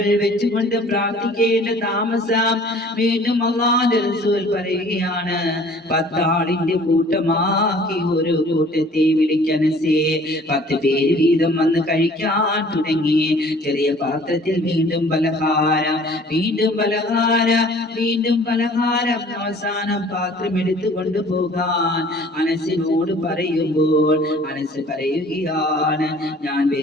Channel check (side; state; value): both; normal; correlation 0.51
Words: വെച്ചുകൊണ്ട് പ്രാർത്ഥിക്കേണ്ട താമസം വീണ്ടും അല്ലാഹുവിന്റെ റസൂൽ പറയുകയാണ്, 10 ആളിന്റെ കൂട്ടമാക്കി ഒരു കൂട്ടത്തെ വിളിക്കനസേ. 10 പേര് വീതം വന്ന് കഴിക്കാൻ തുടങ്ങി. ചെറിയ പാത്രത്തിൽ വീണ്ടും പലഹാരം, വീണ്ടും പലഹാരം, വീണ്ടും പലഹാരം. അവസാനം പാത്രം എടുത്തു കൊണ്ടുപോകാൻ അനസിനോട് പറയുമ്പോൾ അനസ് പറയുകയാണ്, ഞാൻ